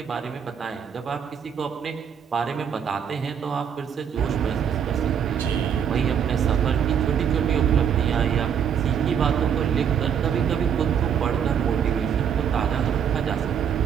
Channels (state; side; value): quieter; left; 8.0 dB